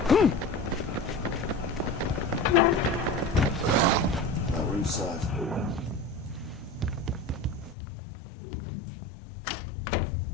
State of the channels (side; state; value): right; drops out; at 7.8 s